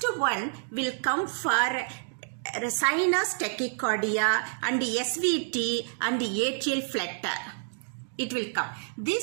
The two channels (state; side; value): silent; left; digital silence